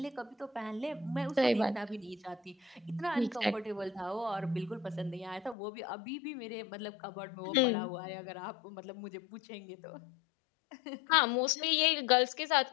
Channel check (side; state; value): right; drops out; at 5.6 s